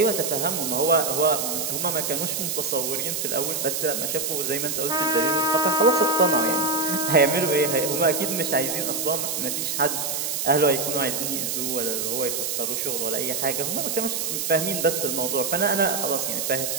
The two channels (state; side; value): noise; right; hiss, 1 dB below the sound